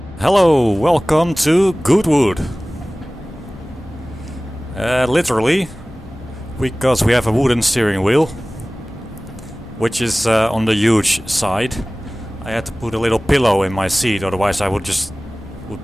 Hello, welcome to Goodwood. Literally, because we have a wooden steering wheel, which is on the huge side. I had to put a little pillow in my seat, otherwise I would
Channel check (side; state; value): both; normal; correlation 0.98